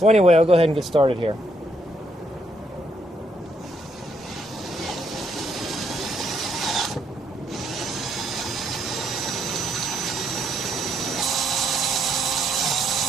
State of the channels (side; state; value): both; normal; correlation 0.73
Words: anyway, I'll go ahead and get started here.